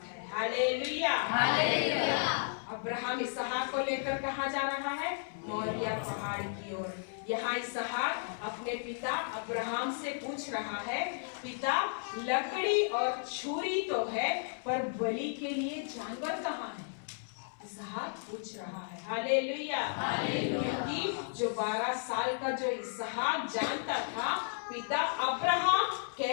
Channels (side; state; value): right; silent; 55 dB below the other